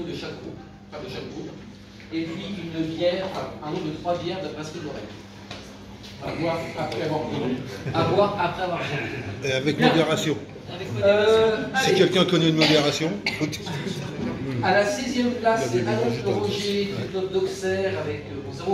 de chaque groupe, et puis une bière, un nombre de 3 bières de brasserie de l'oreille. À boire après avoir bu. À boire après avoir bu. Et avec modération. Si quelqu'un connaît une modération. À la 6e place, c'est Annonce Roger du club d'Auxerre avec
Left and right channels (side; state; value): both; identical; correlation 1.00